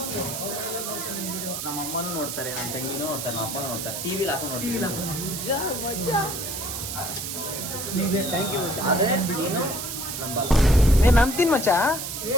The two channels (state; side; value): noise; right; hiss, 5 dB below the sound